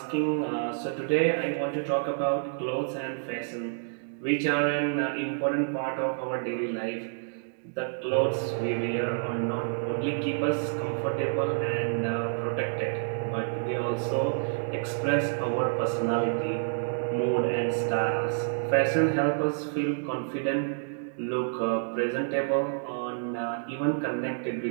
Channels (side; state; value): left; silent; digital silence